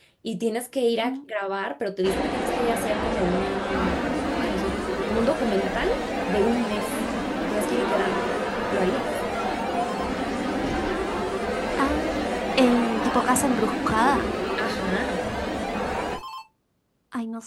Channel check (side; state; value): both; identical; correlation 1.00